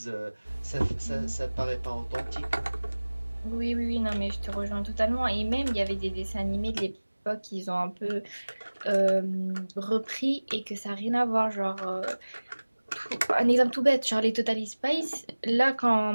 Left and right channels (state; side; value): inverted; both; correlation -1.00